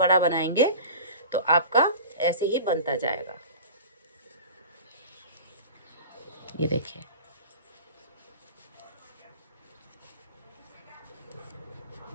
बनाएंगे तो आपका ऐसे ही बनता जाएगा। ये देखिए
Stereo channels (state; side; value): inverted; both; correlation -0.36